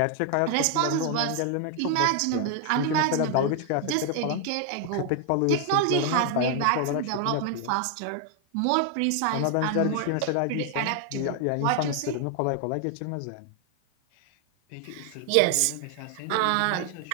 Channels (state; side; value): different; both; correlation 0.00